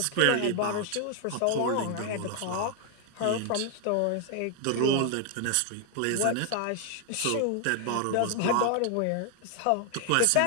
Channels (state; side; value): different; both; correlation 0.00